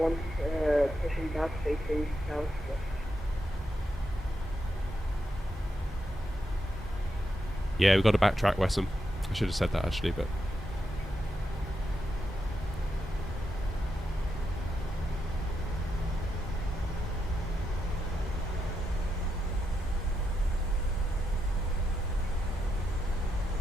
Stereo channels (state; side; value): normal; both; correlation 0.84